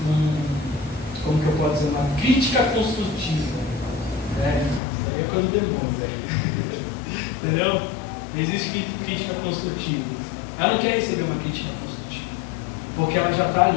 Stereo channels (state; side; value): drops out; right; at 4.8 s